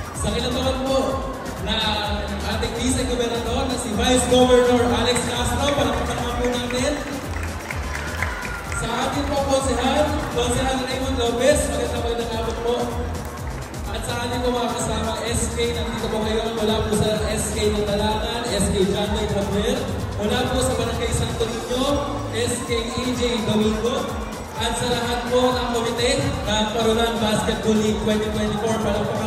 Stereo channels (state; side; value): identical; both; correlation 1.00